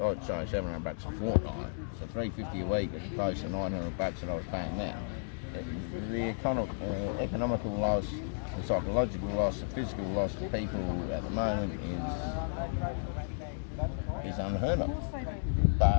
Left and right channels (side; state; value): right; silent; digital silence